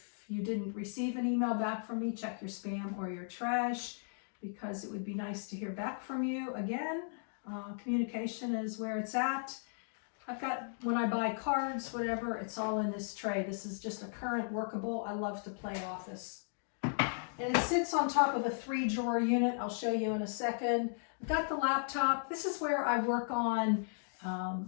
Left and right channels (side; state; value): right; silent; digital silence